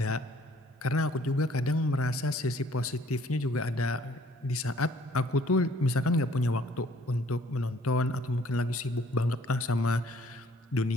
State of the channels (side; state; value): both; normal; correlation 0.59